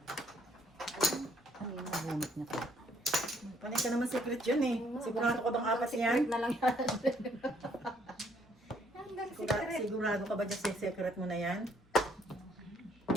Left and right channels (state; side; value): normal; both; correlation 0.66